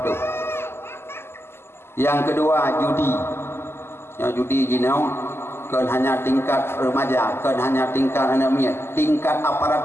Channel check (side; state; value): right; late; 0.12 ms